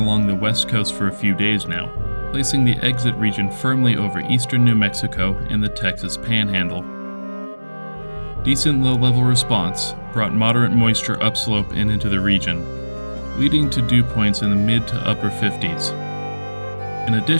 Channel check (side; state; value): both; inverted; correlation -1.00